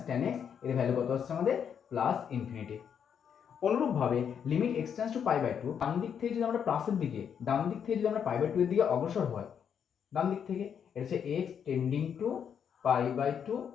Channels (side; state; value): right; quieter; 7.8 dB